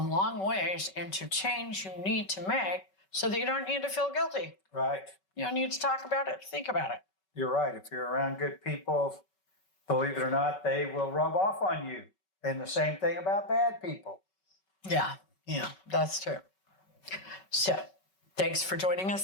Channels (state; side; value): late; right; 5.3 ms